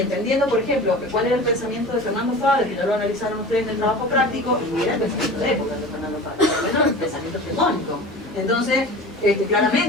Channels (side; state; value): both; normal; correlation 0.36